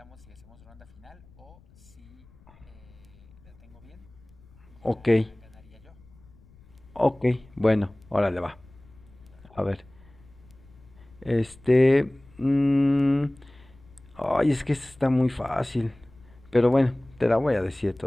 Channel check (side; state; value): left; noise; rumble, 25 dB below the sound